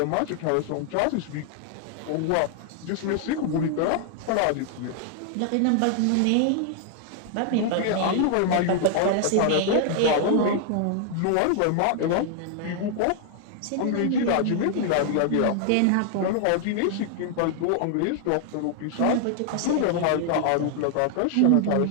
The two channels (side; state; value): both; different; correlation 0.00